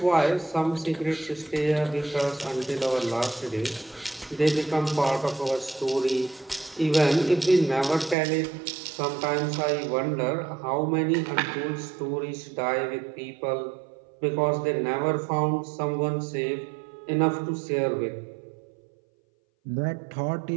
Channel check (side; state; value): left; drops out; at 8.2 s